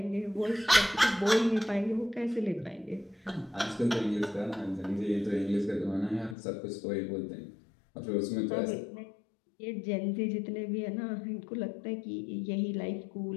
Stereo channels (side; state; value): right; drops out; at 6.4 s